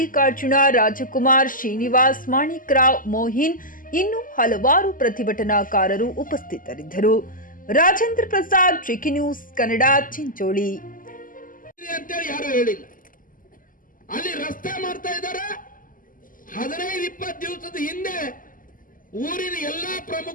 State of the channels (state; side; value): late; right; 0.40 ms